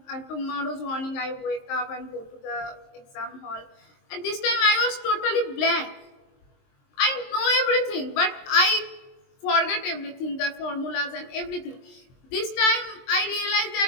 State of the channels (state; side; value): late; right; 23 ms